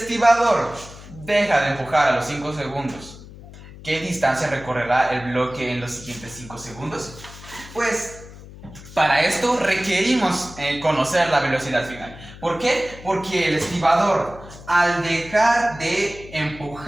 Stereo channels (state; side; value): noise; left; hum, 17 dB below the sound